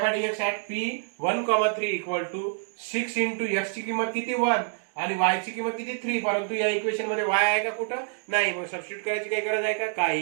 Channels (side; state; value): left; silent; digital silence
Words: by dx at p 1,3 equal to 6 into x ची किंमत किती 1 आणि y ची किंमत किती 3. परंतु या इक्वेशन मध्ये y आहे का कुठं नाही, मग सबस्टिट्यूट करायची काही गरज आहे का,